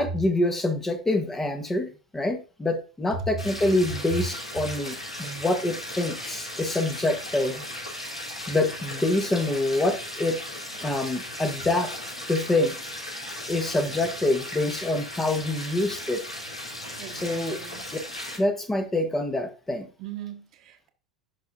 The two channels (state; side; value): normal; both; correlation 0.64